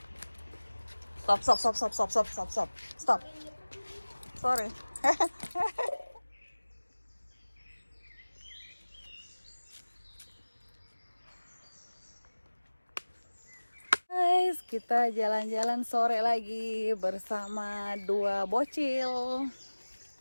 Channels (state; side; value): inverted; both; correlation -1.00